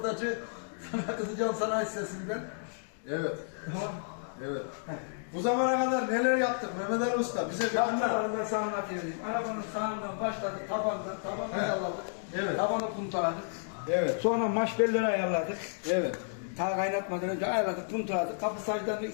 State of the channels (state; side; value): silent; right; digital silence